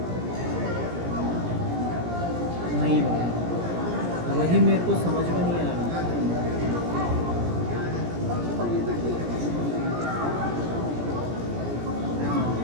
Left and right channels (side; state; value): left; late; 17 ms